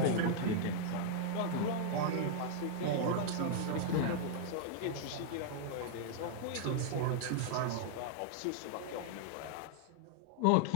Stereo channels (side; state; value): both; different; correlation -0.01